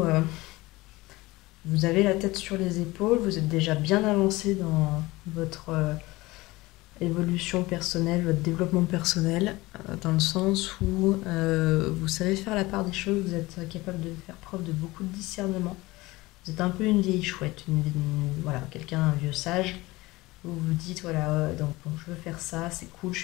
vous avez la tête sur les épaules, vous êtes déjà bien avancé dans votre évolution personnelle, votre développement personnel, dans le sens où vous savez faire la part des choses, vous êtes capable de faire preuve de beaucoup de discernement. Vous êtes un peu une vieille chouette, voilà, quelqu'un, un vieux sage. Vous vous dites, voilà, donc bon, je veux faire ça, c'est cool, je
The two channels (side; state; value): right; quieter; 20.4 dB